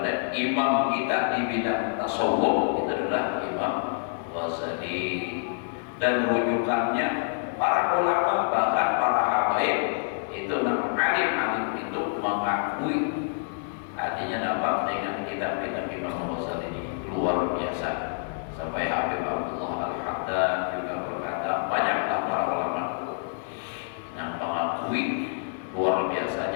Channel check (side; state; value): right; silent; 60 dB below the other